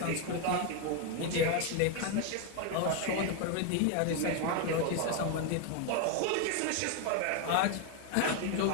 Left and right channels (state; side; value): different; both; correlation 0.01